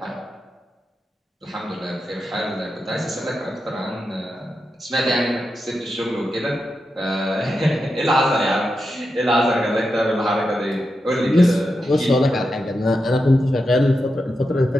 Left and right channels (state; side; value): normal; both; correlation 0.88